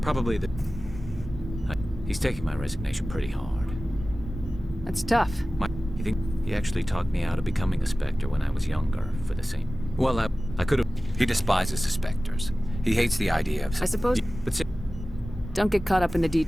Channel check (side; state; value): both; normal; correlation 0.96